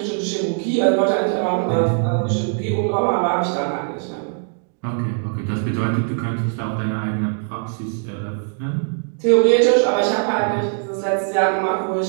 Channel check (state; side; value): silent; left; 56 dB below the other